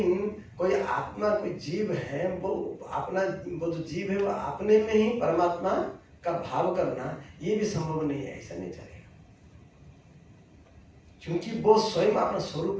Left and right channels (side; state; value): both; identical; correlation 1.00